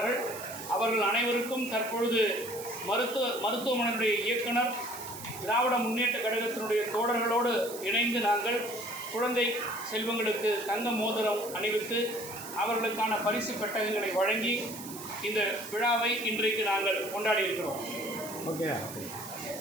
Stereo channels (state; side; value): noise; right; hiss, 12 dB below the sound